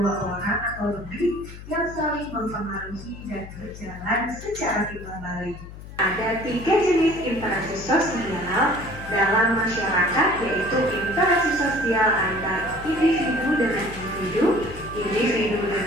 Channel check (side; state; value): left; noise; hum, 14 dB below the sound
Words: orang atau lebih yang saling mempengaruhi dan berjalan secara timbal balik. Ada 3 jenis interaksi sosial dalam masyarakat, yaitu interaksi sosial antar individu dengan individu, individu